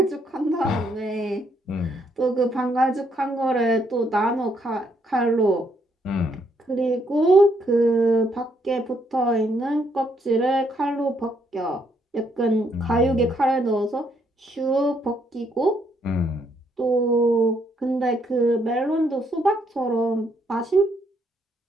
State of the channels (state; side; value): normal; both; correlation 0.72